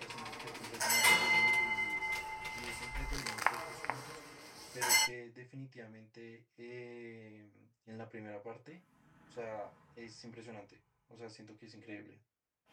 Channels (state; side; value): identical; both; correlation 1.00